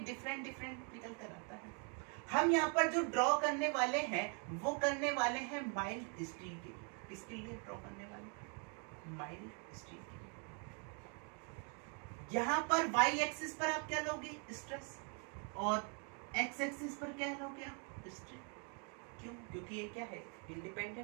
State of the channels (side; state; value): left; quieter; 38.9 dB